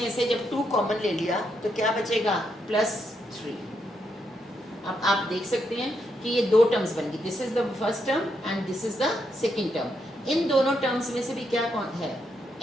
से जब 2 कॉमन ले लिया तो क्या बचेगा? प्लस 3। अब आप देख सकते हैं कि ये दो टर्म्स बन गई, this is the first term and this is the second term. इन दोनों टर्म्स में से भी क्या है?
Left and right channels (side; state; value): both; normal; correlation 0.79